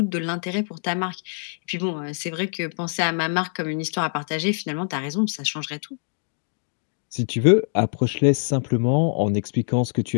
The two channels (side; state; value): right; silent; 56 dB below the other